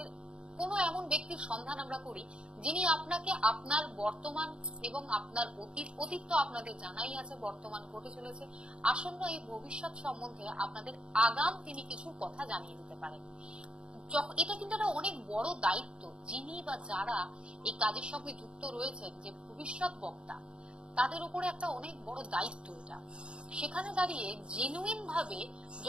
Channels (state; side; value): late; left; 0.054 ms